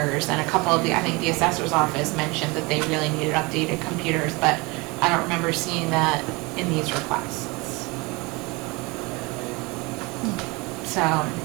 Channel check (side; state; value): left; quieter; 25.7 dB